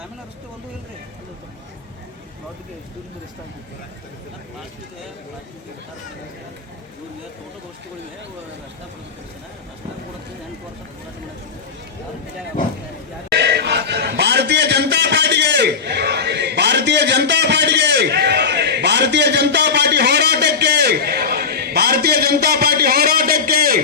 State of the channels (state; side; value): quieter; right; 5.3 dB